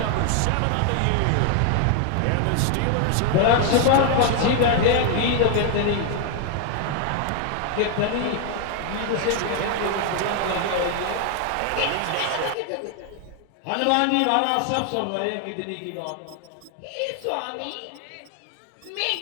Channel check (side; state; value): both; different; correlation 0.00